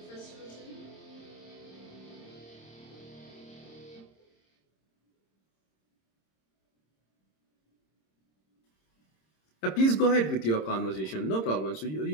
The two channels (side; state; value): right; late; 26 ms